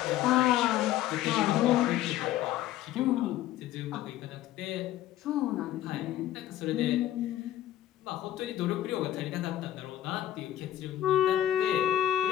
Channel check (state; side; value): quieter; right; 12.8 dB